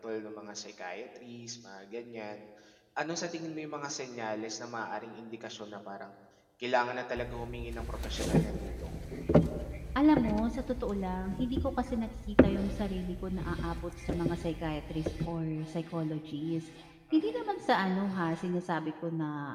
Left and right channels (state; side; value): identical; both; correlation 1.00